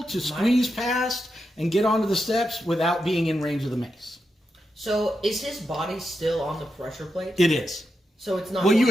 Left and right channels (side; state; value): both; normal; correlation 0.86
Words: to squeeze past and get onto the steps without being in range of the mace. So is his body still on the pressure plate? It is. So it's not. Well, you